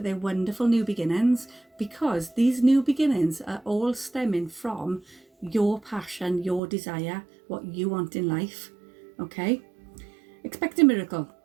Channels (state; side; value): drops out; left; at 6.6 s